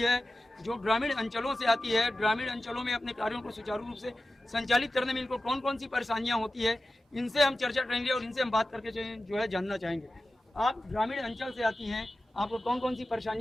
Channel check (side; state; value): both; normal; correlation 0.94